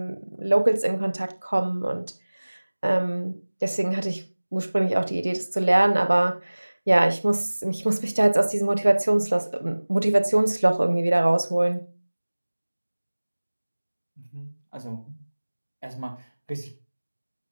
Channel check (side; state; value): both; inverted; correlation -1.00